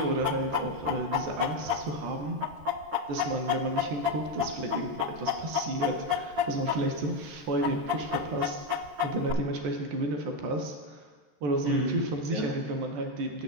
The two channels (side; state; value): left; late; 13 ms